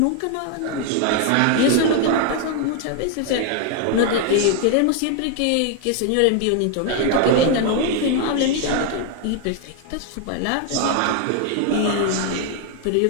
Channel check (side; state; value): both; different; correlation 0.01